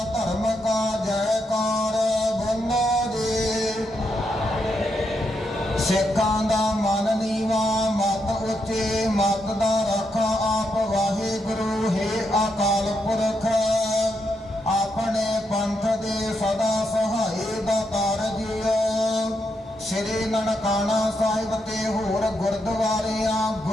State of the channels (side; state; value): both; normal; correlation 0.81